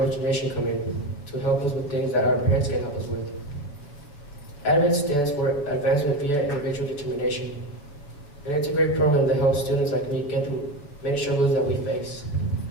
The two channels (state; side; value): late; right; 6.9 ms